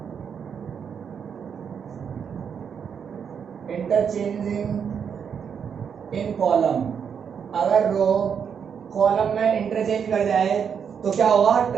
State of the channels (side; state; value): left; quieter; 7.2 dB